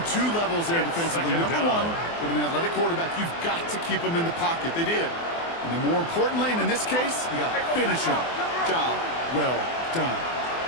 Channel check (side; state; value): right; late; 24 ms